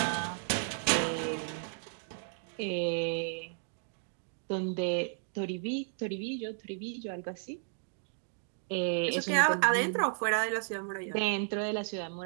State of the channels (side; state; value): left; silent; digital silence